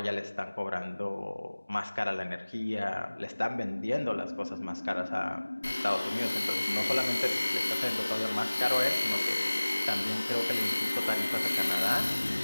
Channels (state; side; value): inverted; both; correlation -1.00